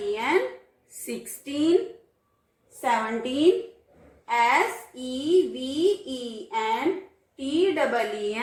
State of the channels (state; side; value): identical; both; correlation 1.00